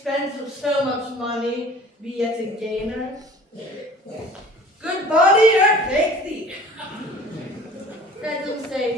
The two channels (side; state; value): both; normal; correlation 0.46